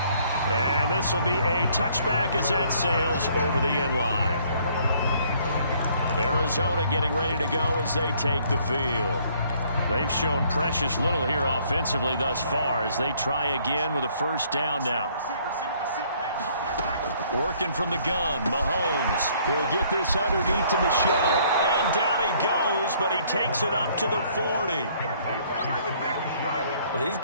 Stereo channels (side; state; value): both; inverted; correlation -0.62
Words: And this will be a touchback as that sails over the end line. Arizona getting ready to go as they take the field. They've shown precious little here offensively thus far as they try again with a 1st down now. Working from the gun, Mahomes. He'll get this underneath to Michel. And down he goes, but he takes it up to the 40. Well, these